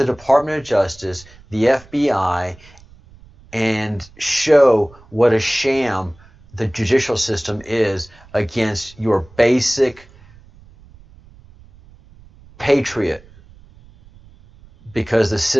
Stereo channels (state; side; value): noise; right; rumble, 25 dB below the sound